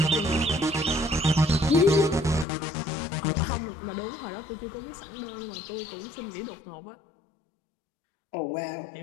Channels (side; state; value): right; drops out; at 2.5 s